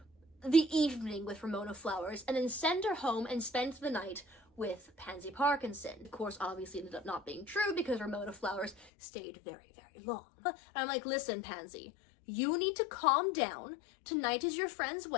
the evening with Ramona Flowers and then send her home and spend the night with Pansy Parkinson. Of course, obviously ended up not being true because Ramona Flowers stayed very, very long. And I'm like, listen, Pansy, you need to calm down. Tonight is your friend's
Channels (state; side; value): drops out; right; at 8.8 s